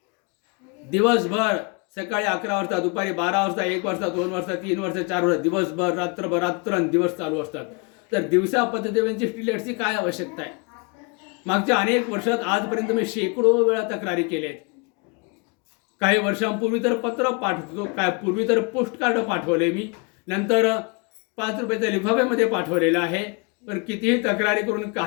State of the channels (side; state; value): right; quieter; 31.6 dB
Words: दिवसभर सकाळी 11 वाजता, दुपारी 12 वाजता, 1 वाजता, 2 वाजता, 3 वाजता, 4 वाजता, दिवसभर रात्रंदिवस चालू असतात. तर दिवसा पथदिव्यांची स्ट्रीट लाईट्सची काय आवश्यकता आहे? मागच्या अनेक वर्षात आजपर्यंत मी शेकडो वेळा तक्रारी केल्या आहेत. काही वर्षांपूर्वी तर पत्र पाठवतो, पूर्वी तर पोस्ट कार्ड पाठवले मी, नंतर 5 रुपयाच्या लिफाफ्यामध्ये पाठवलेलं आहे. पण कितीही तक्रारी करून